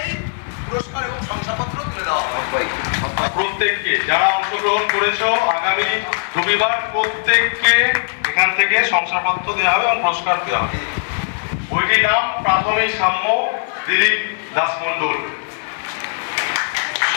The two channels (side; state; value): right; silent; 58 dB below the other